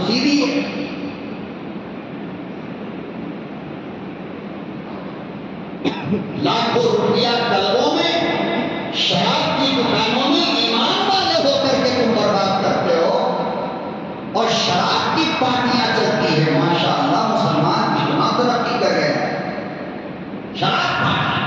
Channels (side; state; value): both; identical; correlation 1.00